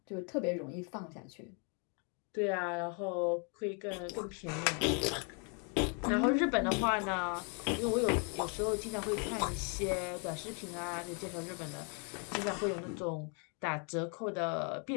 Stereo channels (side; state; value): right; quieter; 37.6 dB